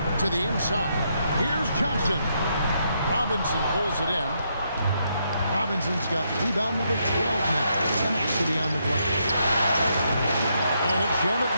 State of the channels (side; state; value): both; inverted; correlation -0.77